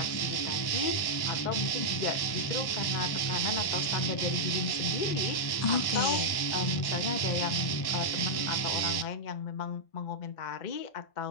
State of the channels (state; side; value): late; right; 1.1 ms